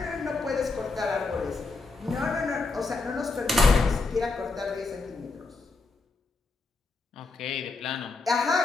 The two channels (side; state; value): right; quieter; 3.8 dB